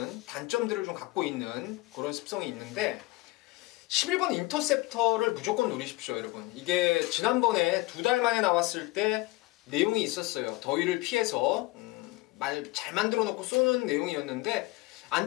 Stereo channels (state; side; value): quieter; right; 21.1 dB